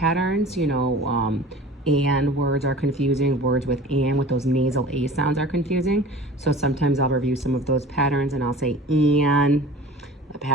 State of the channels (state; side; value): normal; both; correlation 0.41